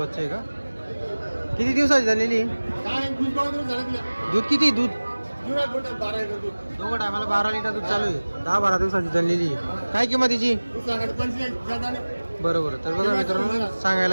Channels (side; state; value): both; inverted; correlation -1.00